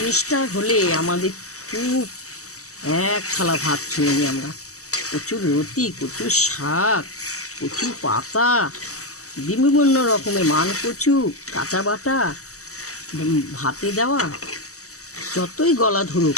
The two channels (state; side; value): late; right; 0.65 ms